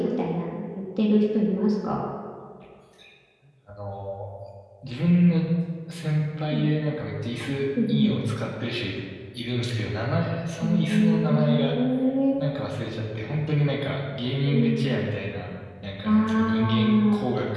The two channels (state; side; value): identical; both; correlation 1.00